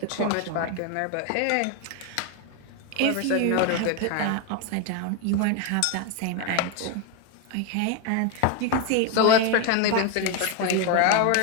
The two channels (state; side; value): different; both; correlation 0.02